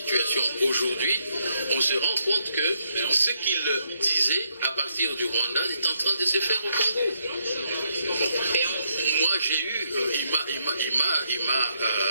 aujourd'hui, on se rend compte que ce qu'il disait à partir du Rwanda est en train de se faire au Congo. Bon. Moi, il m'a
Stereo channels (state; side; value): inverted; both; correlation -0.77